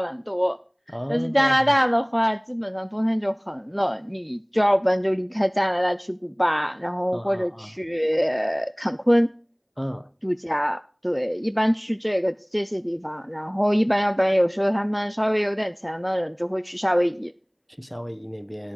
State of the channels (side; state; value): both; identical; correlation 1.00